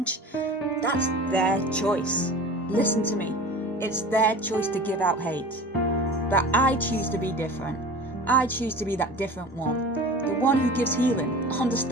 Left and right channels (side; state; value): both; normal; correlation 0.38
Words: that's their choice. Listen to me. It's their choice to give out hate. But I choose to be different. I choose to be that different one. The one who gives healing,